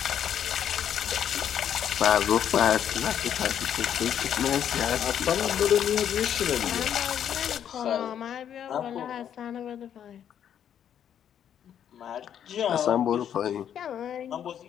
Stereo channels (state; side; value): quieter; right; 9.4 dB